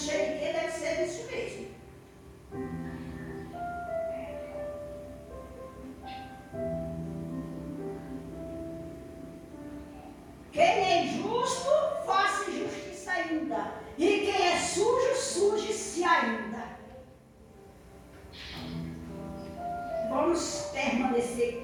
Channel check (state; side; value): identical; both; correlation 1.00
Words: o que, deve ser isso mesmo. Quem é injusto